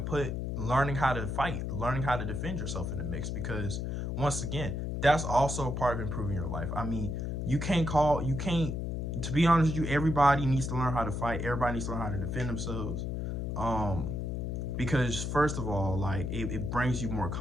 learning how to fight, learning how to defend yourself in the mix, because once again, that's also a part of improving your life. I mean, you can't, to be honest with you, everybody needs to learn how to fight. Everybody needs to learn how to defend themselves. Um, because first of all, like it brings you more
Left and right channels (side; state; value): left; noise; hum, 2 dB below the sound